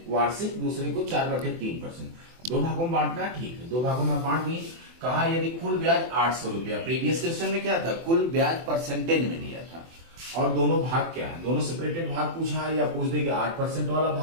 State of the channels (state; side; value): late; left; 24 ms